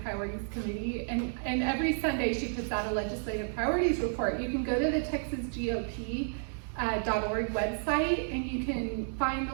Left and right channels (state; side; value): silent; left; digital silence